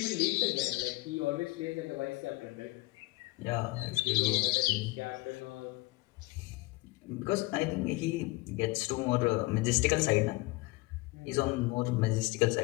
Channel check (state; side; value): quieter; right; 21.5 dB